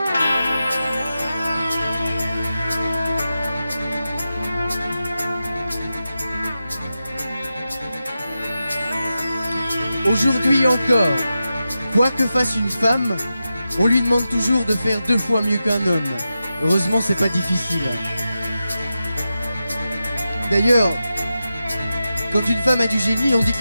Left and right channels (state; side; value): inverted; both; correlation -0.91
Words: Aujourd'hui encore, quoi que fasse une femme, on lui demande toujours de faire 2 fois mieux qu'un homme. Heureusement, c'est pas difficile. D'ailleurs, quand une femme a du génie, on dit